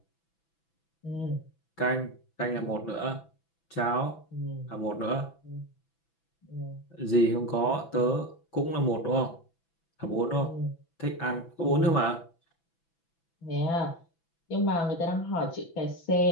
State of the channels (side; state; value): right; late; 6.0 ms